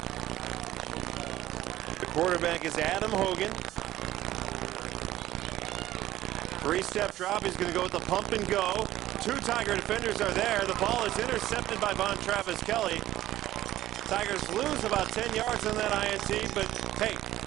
The quarterback is Adam Hogan. Three-step drop. He's going to go with the pump and go. Two Tiger defenders are there. The ball is intercepted by Von Travis Kelly. Tigers lose about 10 yards on that INT, but hey,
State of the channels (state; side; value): quieter; left; 14.3 dB